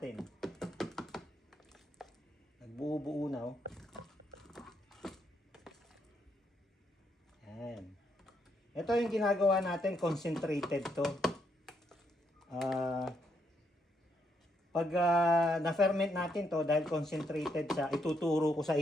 Nagbuo-buo na, oh. Yan. Ito yung ginagawa natin, concentrated to. Pag na-ferment natin to, dahil concentrated siya, ituturo ko sa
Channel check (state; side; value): normal; both; correlation 0.76